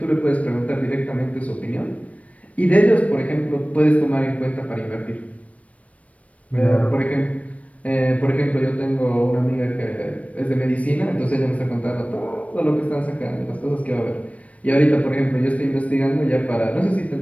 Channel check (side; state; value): right; late; 0.066 ms